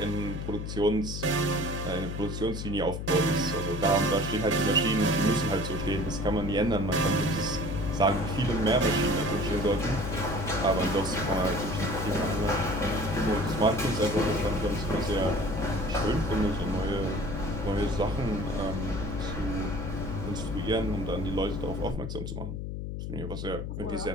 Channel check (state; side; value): noise; left; hum, 5 dB below the sound